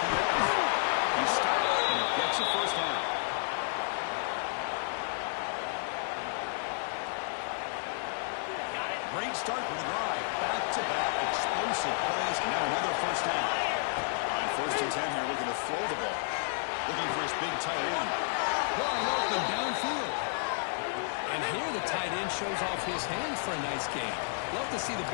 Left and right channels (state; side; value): silent; right; 57 dB below the other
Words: He stops and he gets a first down. Great start for the drive. Back-to-back explosive plays, and now another first down. On 1st and 10 here, looking to throw the ball. Looking for his big tight end. Wide open downfield. And here the tight end shows off his hands for a nice game. Love to see the